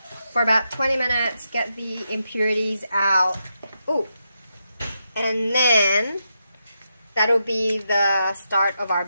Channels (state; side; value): inverted; both; correlation -0.85